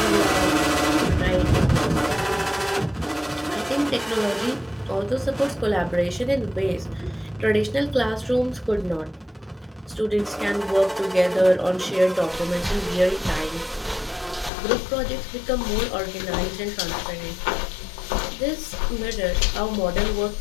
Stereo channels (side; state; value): right; drops out; at 14.5 s